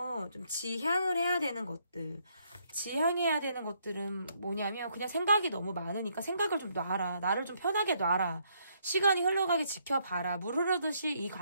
좀 지향해야 되는 것들은 뭐냐면, 그냥 생각이 너무 많으니까 생각을 좀 놔라. 나를 좀 편하게 놔라. 시간이 흘러가게 지켜봐라. 물 흐르듯이 이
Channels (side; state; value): both; inverted; correlation -0.72